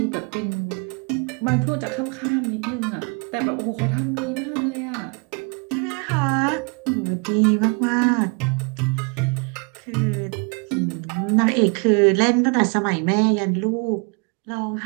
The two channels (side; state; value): left; quieter; 34.2 dB